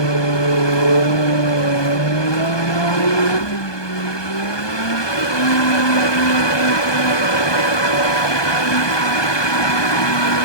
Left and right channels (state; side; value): late; right; 1.2 ms